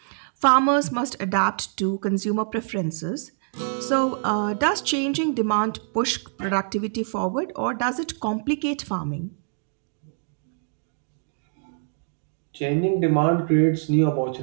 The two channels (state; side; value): silent; left; digital silence